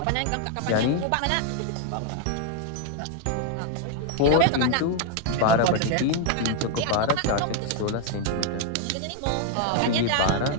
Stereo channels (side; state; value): both; different; correlation 0.01